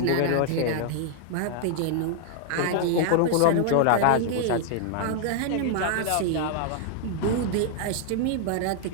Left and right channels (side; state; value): both; different; correlation -0.01